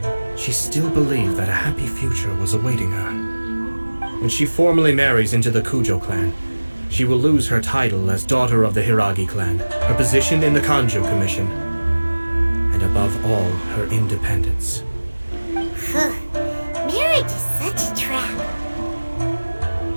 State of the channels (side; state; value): both; inverted; correlation -1.00